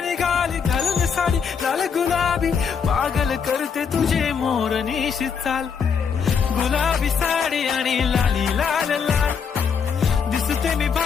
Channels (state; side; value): quieter; right; 6.5 dB